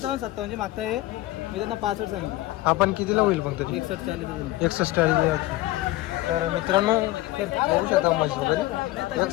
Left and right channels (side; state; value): right; quieter; 17.7 dB